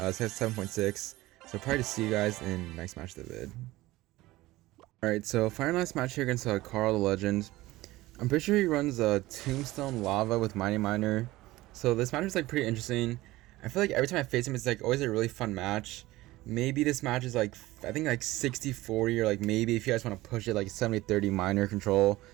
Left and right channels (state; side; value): quieter; left; 18.2 dB